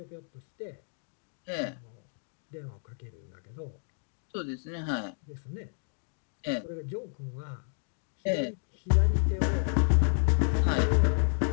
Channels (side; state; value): right; silent; digital silence